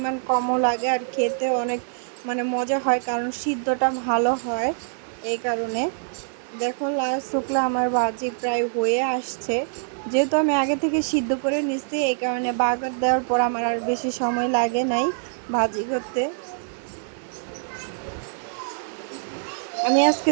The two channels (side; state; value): left; silent; 58 dB below the other